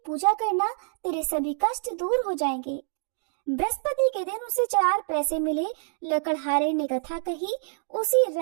पूजा करना, तेरे सभी कष्ट दूर हो जाएंगे। बृहस्पति के दिन उसे 4 पैसे मिले। लकड़हारे ने कथा कही। उसी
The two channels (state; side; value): silent; left; digital silence